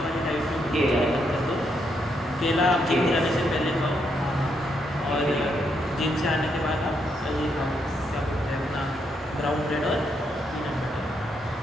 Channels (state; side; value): normal; both; correlation 0.78